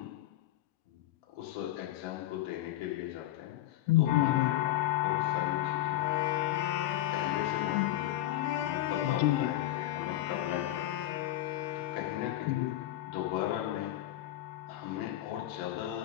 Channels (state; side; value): quieter; right; 14.4 dB